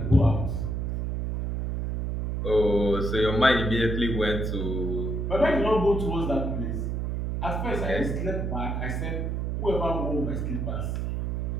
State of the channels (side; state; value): right; noise; hum, 1 dB below the sound